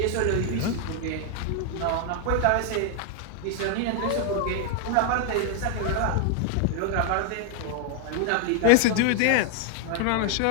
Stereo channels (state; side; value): different; both; correlation 0.00